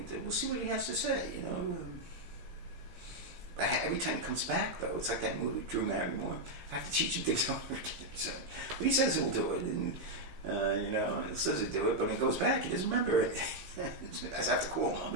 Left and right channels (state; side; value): late; left; 16 ms